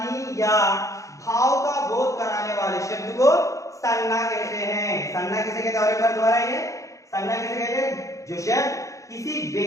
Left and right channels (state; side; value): late; right; 0.15 ms